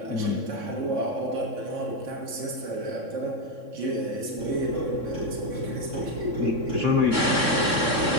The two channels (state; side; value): late; left; 3.6 ms